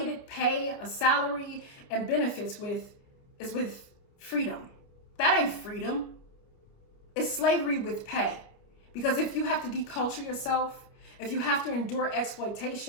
pay, a salary, and benefits with, is with freedom. That ain't freedom. It's slavery with pay. Because if you have to deculture yourself, if you have to endure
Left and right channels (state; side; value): late; right; 29 ms